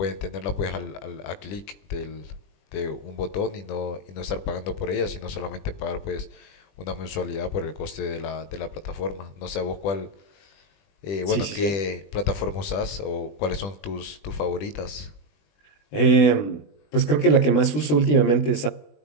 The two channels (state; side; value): late; right; 20 ms